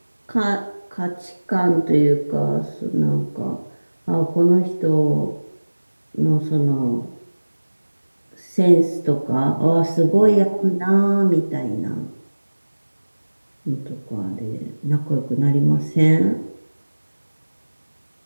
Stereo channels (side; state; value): both; inverted; correlation -1.00